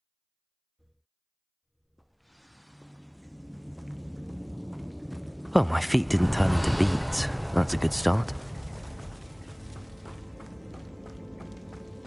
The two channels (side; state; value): both; identical; correlation 1.00